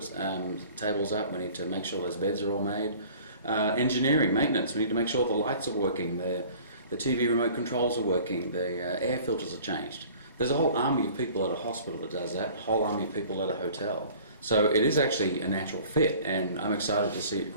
tables up, we need to make sure those beds are all made. Engineering, maintenance, we need to make sure the lights are working, the TV remote controls are working, the air filters are changed. There's a whole army of people at a hospital that does that, a whole army of people at a hotel. So it is actually a natural fit, and I'm excited to see it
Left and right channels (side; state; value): both; inverted; correlation -0.48